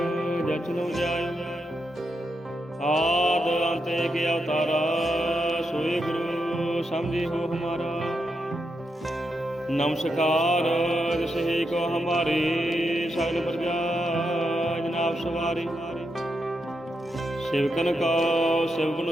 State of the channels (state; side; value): normal; both; correlation 0.84